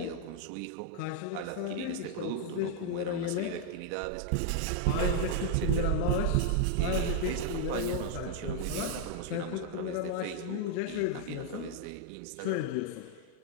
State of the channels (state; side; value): different; both; correlation 0.00